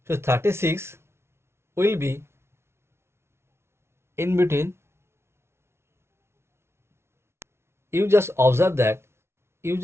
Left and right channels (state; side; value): late; left; 0.12 ms